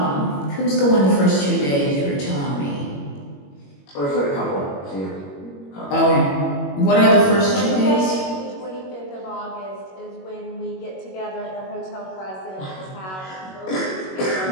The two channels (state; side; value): late; right; 21 ms